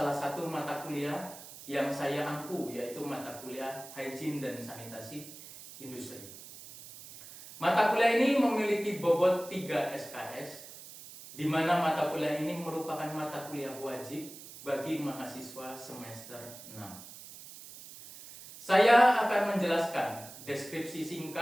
satu mata kuliah yang saya ampu, yaitu mata kuliah Hygiene dan Sanitasi Industri. Mata kuliah ini memiliki bobot 3 SKS, di mana mata kuliah ini merupakan mata kuliah wajib bagi mahasiswa semester 6. Saya akan menjelaskan deskripsi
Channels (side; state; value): right; noise; hiss, 15 dB below the sound